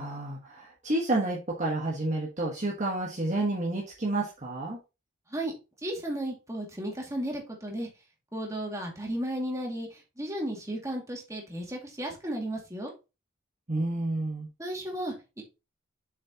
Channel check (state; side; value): normal; both; correlation 0.60